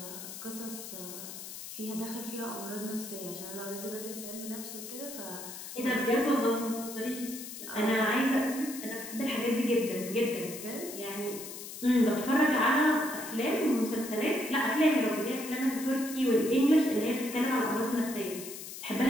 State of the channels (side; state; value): left; noise; hiss, 10 dB below the sound